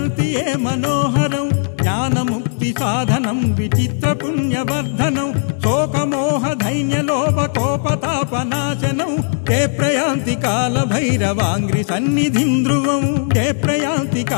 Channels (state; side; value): silent; right; digital silence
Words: ये मनोहरं ज्ञानमुक्तिसाधनं विचित्रपुण्यवर्धनं शोकमोहदैन्यलोपकोपतापनाशनं ते प्रयान्ति कालभैरवाङ्घ्रिसन्निधिं ध्रुवं ते प्रयान्ति